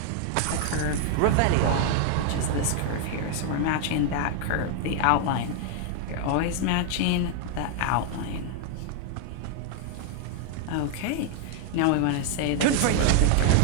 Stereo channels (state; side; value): different; both; correlation 0.00